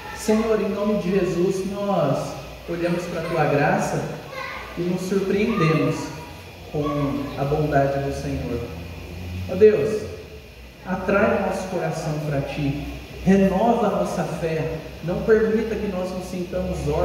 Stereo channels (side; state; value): both; identical; correlation 1.00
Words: Senhor, em nome de Jesus, nós olhamos para a Tua graça e nos surpreendemos com a bondade do Senhor. Ó Deus, atrai o nosso coração para Ti, renova a nossa fé, não permita que nós nos sintamos